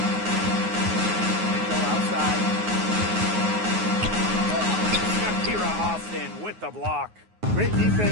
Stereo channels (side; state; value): left; late; 9.5 ms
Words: Mitchell outside. Shakira Austin with the block. Great